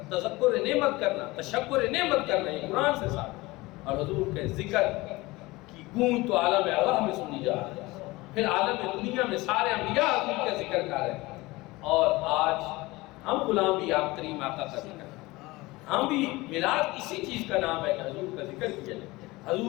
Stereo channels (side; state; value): right; quieter; 21.2 dB